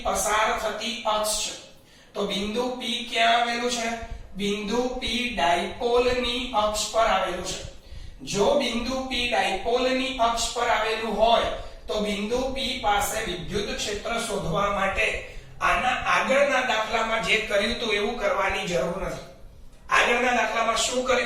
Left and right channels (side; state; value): both; identical; correlation 1.00